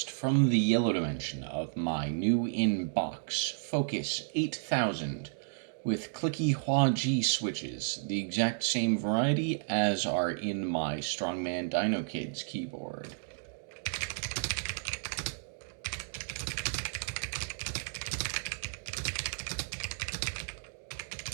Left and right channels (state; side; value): silent; left; digital silence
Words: from the yellow dimension of my new in-box Focus 8000 with clicky Hua Jie switches, the exact same variety as are in my Strongman Dino Kids keyboard.